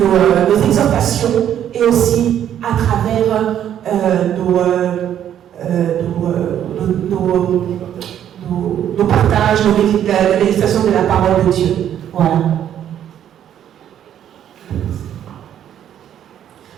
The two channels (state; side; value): quieter; left; 10.2 dB